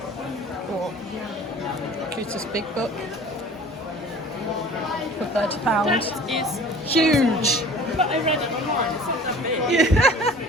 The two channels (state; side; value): normal; both; correlation 0.45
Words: or cutest big book for £30. Is Huge! but I read it online, it's not that big.